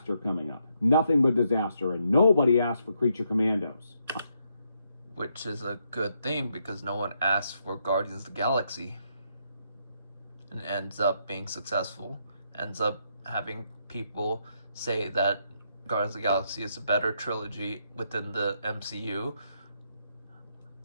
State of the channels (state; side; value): inverted; both; correlation -0.77